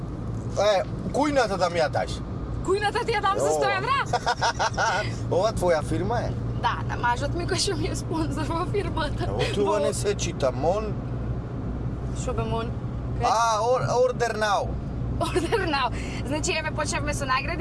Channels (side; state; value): both; identical; correlation 1.00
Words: Кујната да ми ја даш. Кујната ти ја дам за 100 евра? Ова твоја фирма е? Да, на мажот ми кој што ми е спонзор во фирмата. Тоа не се чита, мон. Шо бе мон? Order now. Order now. Значи, еве, почнавме со